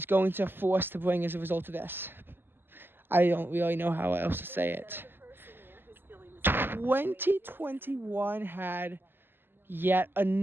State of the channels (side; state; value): left; late; 0.099 ms